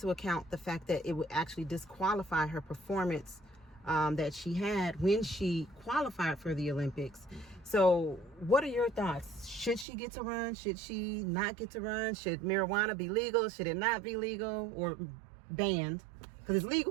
account the fact that it would actually disqualify her performance that she had when she qualified for the Olympics. So what are your thoughts? Should she get to run? Should she not get to run? Should marijuana be legal? Should it not be legal or banned? Because it's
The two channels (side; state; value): left; drops out; at 9.9 s